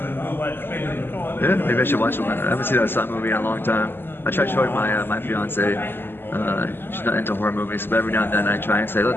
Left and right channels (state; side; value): late; right; 0.10 ms